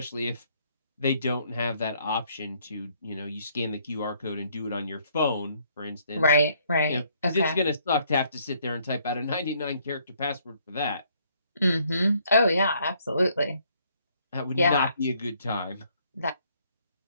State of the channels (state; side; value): inverted; both; correlation -0.67